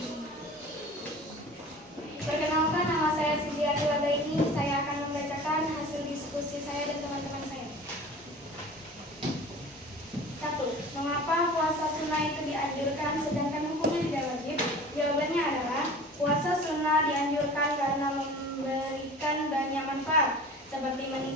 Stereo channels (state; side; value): normal; both; correlation 0.41